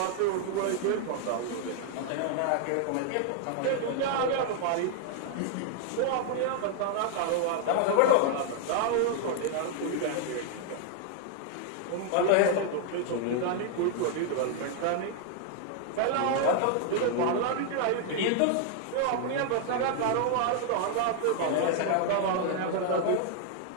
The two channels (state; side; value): different; both; correlation 0.00